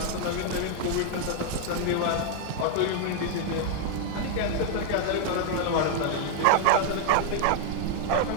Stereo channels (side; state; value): both; different; correlation 0.00